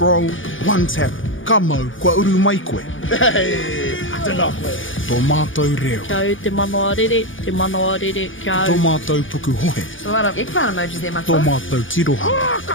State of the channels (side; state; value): right; late; 0.57 ms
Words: one tap, ka mau, kua uru mai koe. Hey, I don't know. Tō mātou reo, Kia au te manoa rere, kia tō au. mātou puku hohe, A lot of eggplant emojis there, my tō friend. mātou